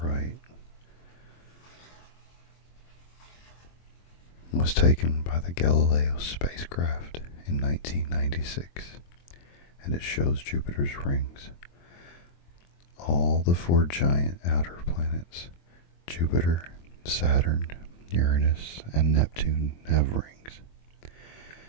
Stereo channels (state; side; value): late; right; 23 ms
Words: right was taken by the Galileo spacecraft in 1996, and it shows Jupiter's rings. All the 4 giant outer planets, Jupiter, Saturn, Uranus, and Neptune, have rings.